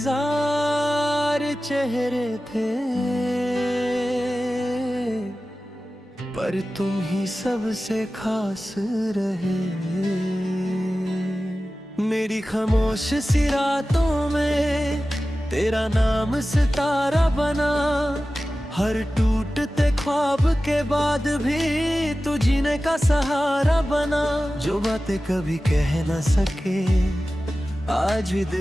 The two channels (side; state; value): both; normal; correlation 0.95